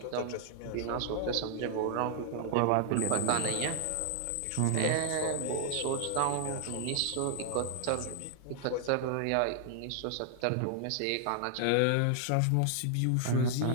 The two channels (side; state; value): both; different; correlation 0.00